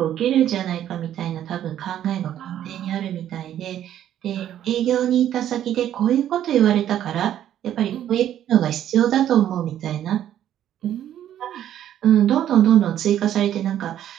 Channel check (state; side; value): quieter; left; 11.1 dB